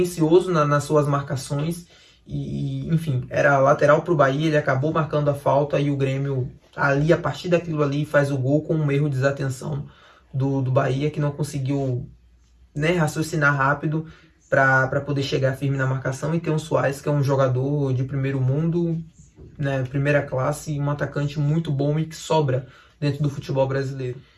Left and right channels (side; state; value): both; identical; correlation 1.00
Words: nas suas marcações. E, enfim, era lateral para o Bahia, ele acabou marcando a falta e o Grêmio, ali, a partir daquilo ali, faz o gol com um erro de desatenção do Bahia, que não conseguiu, né, raciocinar rápido para poder chegar firme na marcação, e ter um Suárez, que é um jogador de primeiro mundo, né, primeira classe, um atacante muito bom e que sobra dentro do futebol brasileiro.